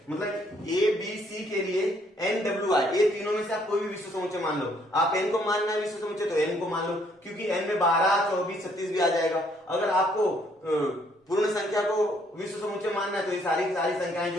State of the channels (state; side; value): normal; both; correlation 0.67